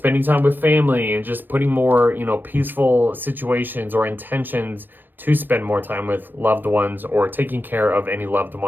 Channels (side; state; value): left; late; 0.092 ms